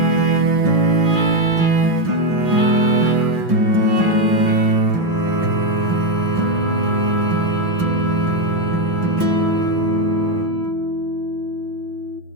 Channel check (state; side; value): late; left; 5.9 ms